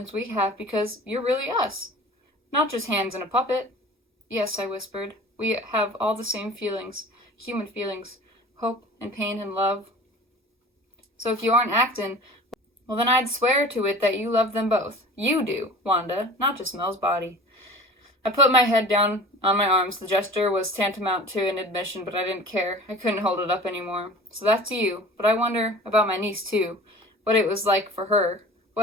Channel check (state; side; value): normal; both; correlation 0.40